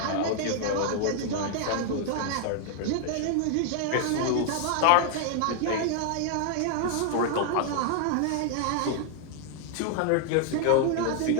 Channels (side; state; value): both; different; correlation 0.00